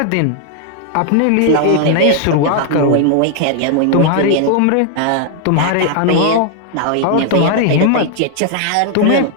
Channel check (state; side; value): different; both; correlation 0.00